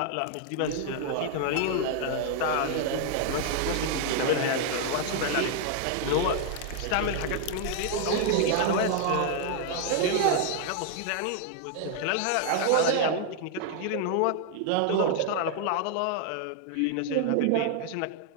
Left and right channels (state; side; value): different; both; correlation 0.00